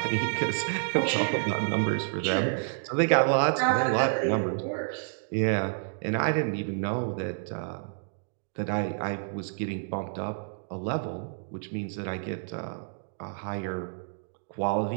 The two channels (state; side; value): silent; left; digital silence